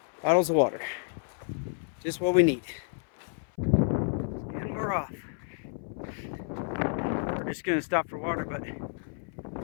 bottles of water. Just what we need. And we're off. We're just gonna stop for water, but it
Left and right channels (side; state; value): right; silent; 56 dB below the other